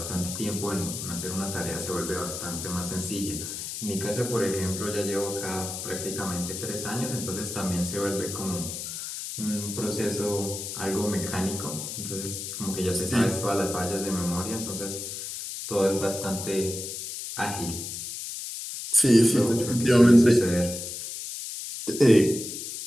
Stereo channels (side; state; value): left; noise; hiss, 7 dB below the sound